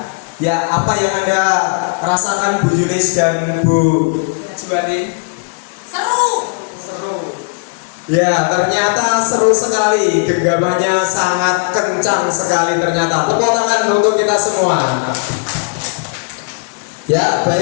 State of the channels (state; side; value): quieter; right; 36.7 dB